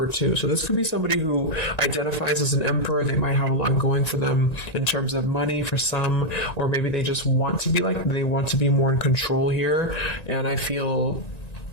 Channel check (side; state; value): right; late; 1.9 ms